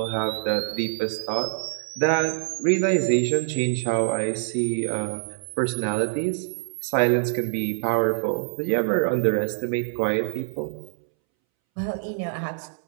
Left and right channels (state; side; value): silent; left; 62 dB below the other